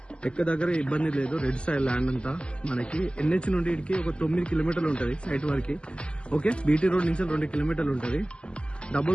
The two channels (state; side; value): late; right; 0.053 ms